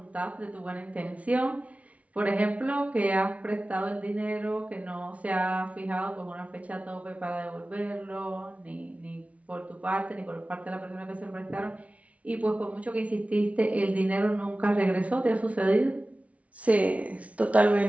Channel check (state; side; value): late; left; 0.066 ms